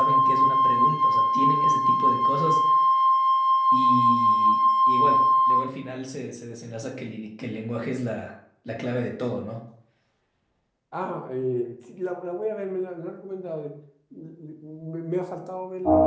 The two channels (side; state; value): both; identical; correlation 1.00